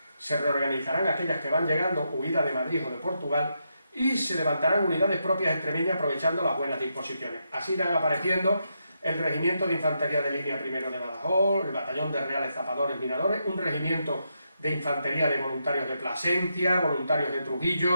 Se reorganizarán aquellas que van llegando huidas de Madrid o de Portugal, y se levantarán unidades propias extremeñas aprovechando las buenas disposiciones. Así irán apareciendo el regimiento de infantería de línea primero de Badajoz, el batallón de reales zapadores minadores, un regimiento de infantería de voluntarios de Plasencia, voluntarios de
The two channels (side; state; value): both; inverted; correlation -0.82